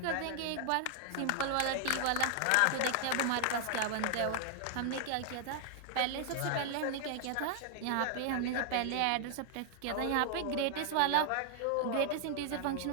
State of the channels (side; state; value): both; different; correlation 0.00